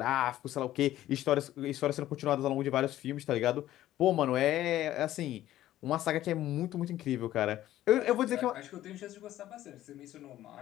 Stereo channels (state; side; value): quieter; right; 13.7 dB